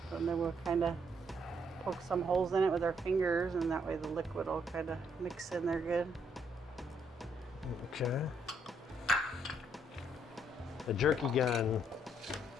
And then we'll kind of poke some holes in it with our fingers, and that way the liquid will kind of mix in there good. Okay. A jerky gun,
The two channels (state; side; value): normal; both; correlation 0.71